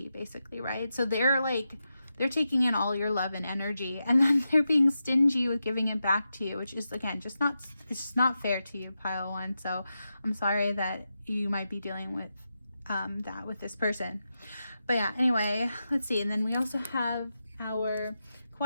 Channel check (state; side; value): inverted; both; correlation -0.89